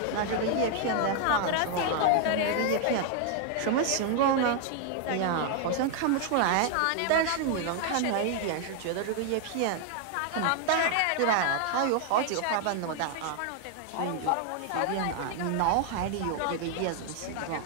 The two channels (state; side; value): different; both; correlation 0.00